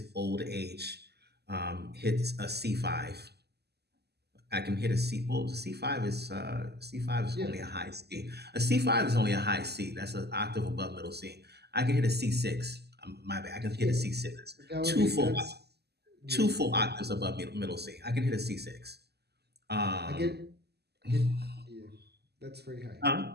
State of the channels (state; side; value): late; left; 0.47 ms